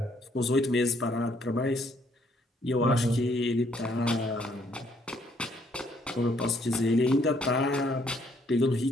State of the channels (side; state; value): both; normal; correlation 0.68